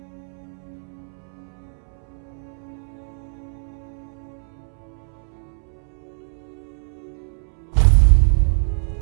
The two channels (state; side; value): silent; left; 63 dB below the other